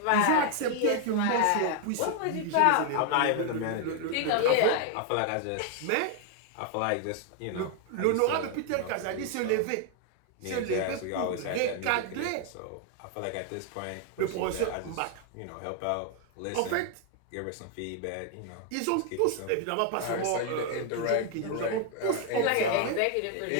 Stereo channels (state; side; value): different; both; correlation 0.00